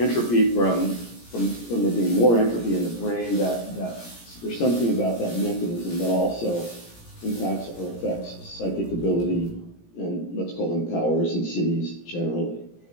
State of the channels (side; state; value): right; late; 17 ms